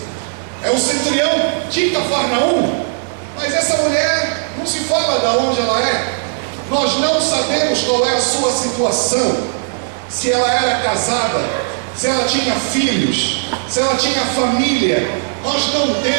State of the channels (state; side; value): silent; left; digital silence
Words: é o centurião de Cafarnaum. Mas essa mulher, não se fala de onde ela é. Nós não sabemos qual é a sua situação, se ela era casada, se ela tinha filhos, se ela tinha família. Nós não